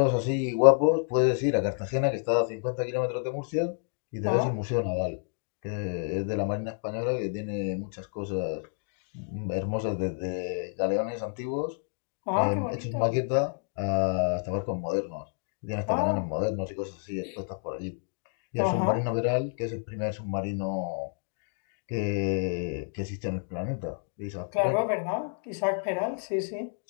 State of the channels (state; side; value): silent; right; digital silence